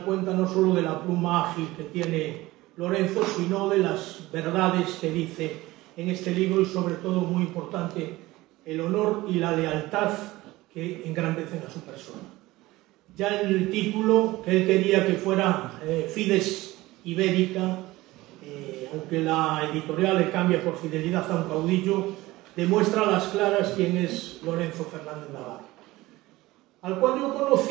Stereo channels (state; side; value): quieter; left; 18.8 dB